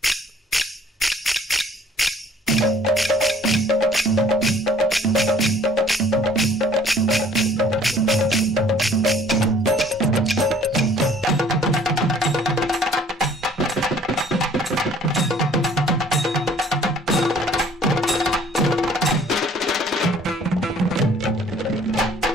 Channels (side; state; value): both; normal; correlation 0.56